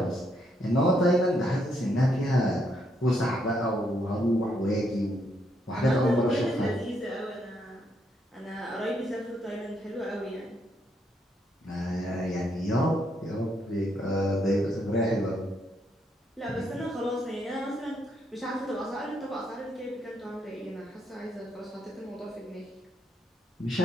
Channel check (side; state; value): both; normal; correlation 0.75